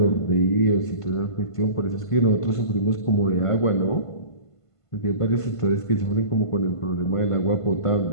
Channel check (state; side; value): late; right; 1.5 ms